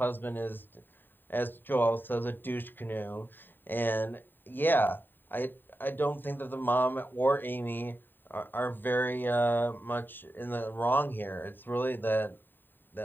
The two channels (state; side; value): late; right; 0.093 ms